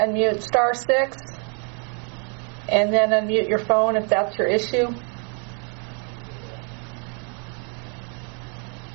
*6 and then unmute your phone if that's your issue.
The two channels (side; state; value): left; quieter; 39.6 dB